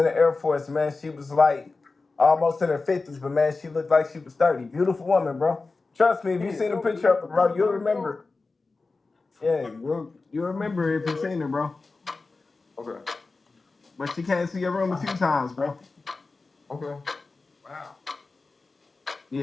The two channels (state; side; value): quieter; right; 3.8 dB